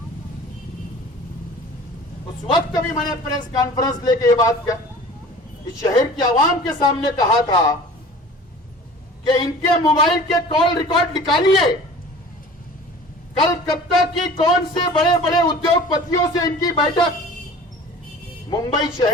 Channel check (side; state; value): both; normal; correlation 0.43